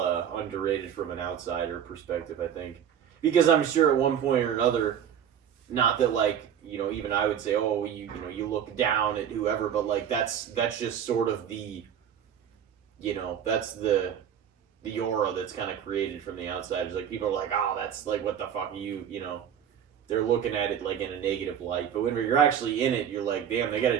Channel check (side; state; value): left; quieter; 8.8 dB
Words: underrated from an outsider perspective, I think, because I'm sure at one point or another, not that like even I would say, oh, you look down at whoever, but like that's just sort of the that's the aura that's kind of created from the outsiders. Like people are like, oh, that's like, what the fuck are you they're looking at it like in a negative light. But when you're actually in it, you're like, damn, they got